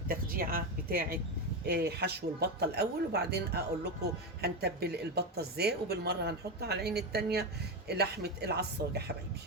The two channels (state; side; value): normal; both; correlation 0.13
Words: بتاعة حشو البطة الأول، وبعدين أقول لكم هنتبل البطة ازاي، وبالمرة هنحط على العين التانية لحمة العصاج يا حبايبي.